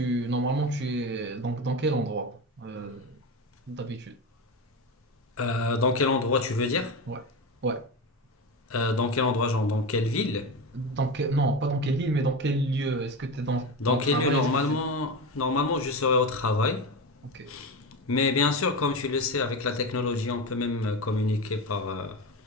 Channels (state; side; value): normal; both; correlation 0.21